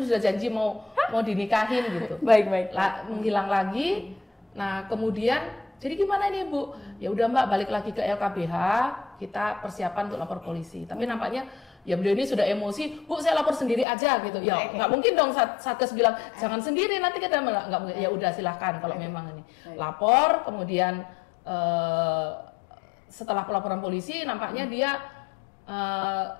sudah janji mau dinikahin gitu. Baik. Menghilang lagi. Nah, kemudian jadi gimana ini Bu? Ya udah Mbak, balik lagi ke LKBH, kita persiapan untuk lapor polisi. Tapi nampaknya ya beliau ini sudah emosi, Bu saya lapor sendiri aja gitu. Ya nggak mungkin dong Satgas bilang jangan sendiri nanti kita nggak mungkin. Ya udah silahkan kalau memang ini lapor. Kemudian setelah pelaporan polisi nampaknya dia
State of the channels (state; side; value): drops out; right; at 13.9 s